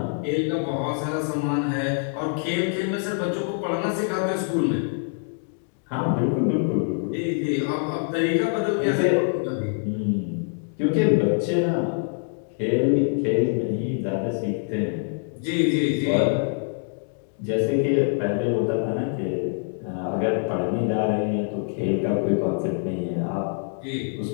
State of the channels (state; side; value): silent; right; 62 dB below the other